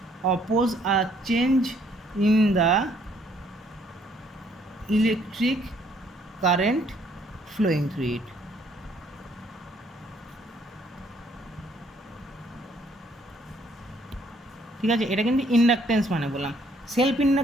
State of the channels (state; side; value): normal; both; correlation 0.65